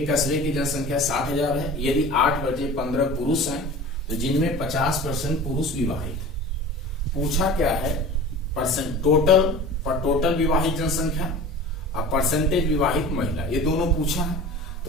कस्बे की जनसंख्या 60,000 है, यदि 8 बचे 15 पुरुष हैं तो जिनमें 50% पुरुष विवाहित। पूछा क्या है, टोटल विवाहित जनसंख्या और परसेंटेज विवाहित महिला, ये दोनों पूछा है।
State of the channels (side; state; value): both; normal; correlation 0.38